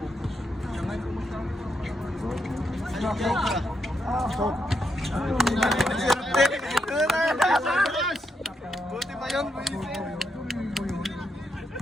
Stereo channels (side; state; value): both; normal; correlation 0.81